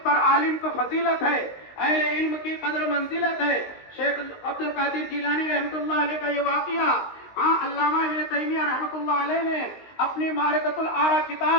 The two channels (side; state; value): right; late; 19 ms